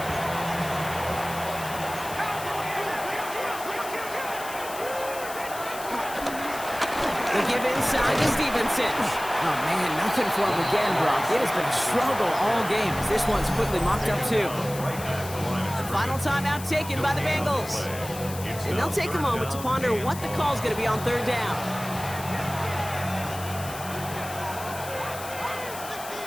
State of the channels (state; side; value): noise; left; hiss, 12 dB below the sound